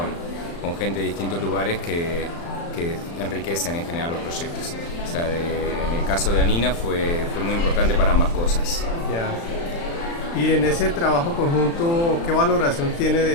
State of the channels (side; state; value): right; late; 35 ms